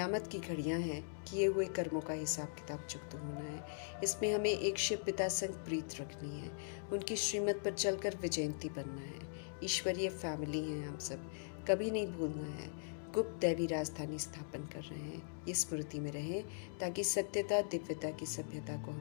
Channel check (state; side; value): silent; right; digital silence